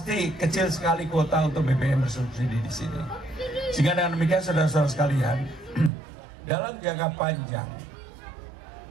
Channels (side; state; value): left; drops out; at 5.9 s